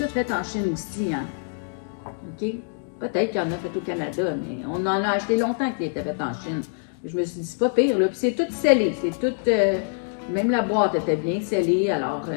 fait en Chine aussi, hein. OK? Peut-être qu'il y en a fait au Canada, mais on en a acheté longtemps qu'il était fait en Chine. Je me suis dit, c'est pas pire, là. Puis c'est tout scellé, c'est tout... même la boîte était bien scellée, alors...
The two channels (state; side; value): silent; right; digital silence